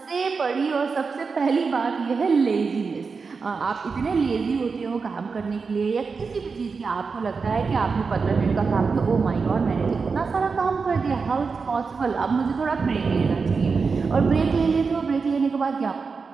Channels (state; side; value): quieter; left; 4.9 dB